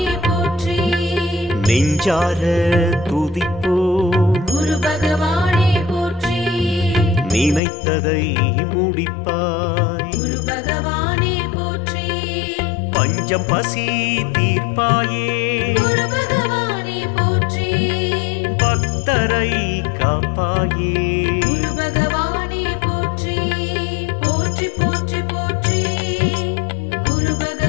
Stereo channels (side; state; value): right; drops out; at 7.6 s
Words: போற்றி. நெஞ்சார துதிப்போ குரு பகவானே போற்றி. நினைத்ததை முடிப்பாய் குரு பகவானே போற்றி. பஞ்சம் பசி தீர்ப்பாயே குரு பகவானே போற்றி. பக்தரை காப்பாயே குரு பகவானே போற்றி. போற்றி போற்றி போற்றி. குரு